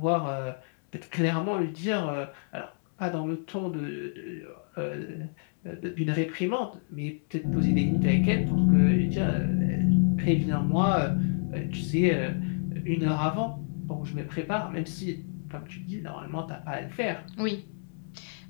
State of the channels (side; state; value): right; silent; digital silence